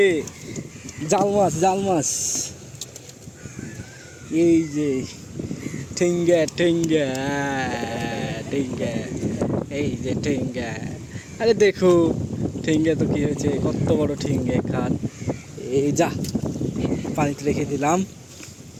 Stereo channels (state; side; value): identical; both; correlation 1.00